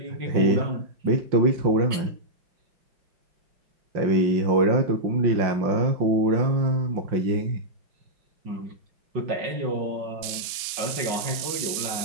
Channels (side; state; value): left; late; 5.8 ms